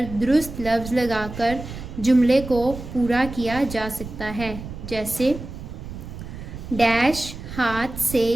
درست لفظ لگا کر جملے کو پورا کیا جا سکتا ہے، جیسے ڈیش ہاتھ سے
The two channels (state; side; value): noise; right; rumble, 11 dB below the sound